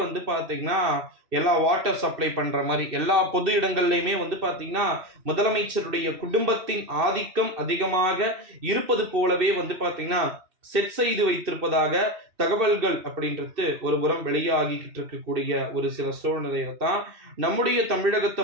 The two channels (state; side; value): late; left; 2.6 ms